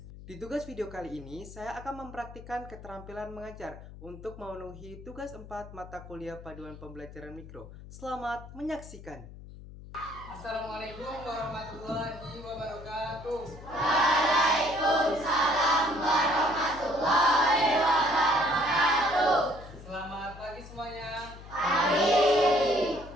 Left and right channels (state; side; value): noise; left; hum, 16 dB below the sound